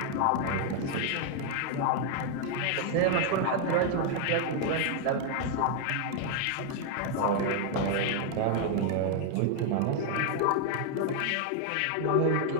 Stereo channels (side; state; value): both; different; correlation 0.00